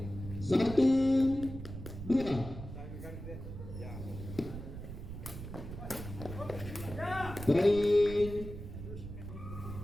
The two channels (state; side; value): noise; right; rumble, 10 dB below the sound